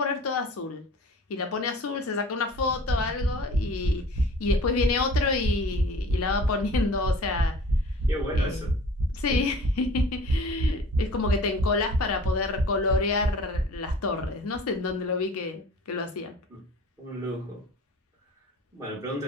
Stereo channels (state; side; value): normal; both; correlation 0.45